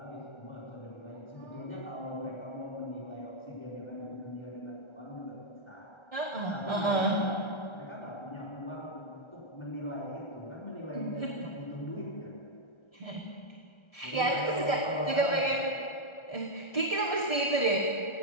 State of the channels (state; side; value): late; right; 1.3 ms